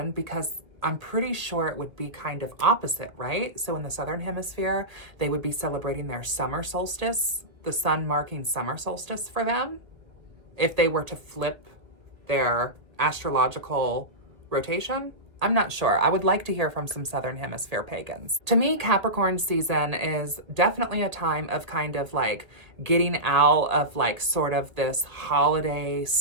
because I'm pretty sure it would be kind of opposite, right? So in the Southern Hemisphere, they would be celebrating their summer solstice, the sun marking summer solstice for them, if they were to flip their astrological rotation. I'm not sure. I would like to hear from some Southern Hemisphere pagans. To me, Capricorn season is definitely a time of kind of like getting out of like sort of this holiday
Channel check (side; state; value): left; late; 1.5 ms